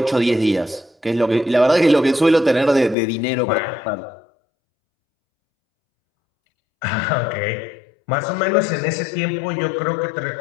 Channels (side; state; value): right; drops out; at 3.0 s